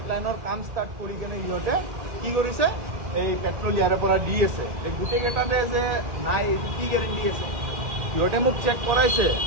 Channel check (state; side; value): late; left; 1.8 ms